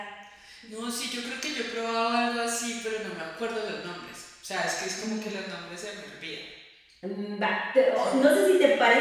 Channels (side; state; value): both; identical; correlation 1.00